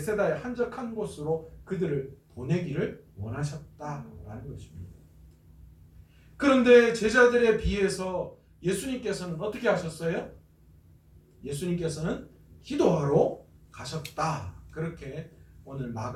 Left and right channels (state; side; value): identical; both; correlation 1.00